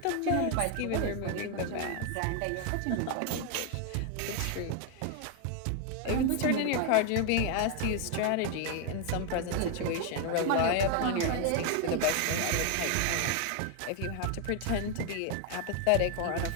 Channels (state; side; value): different; both; correlation 0.00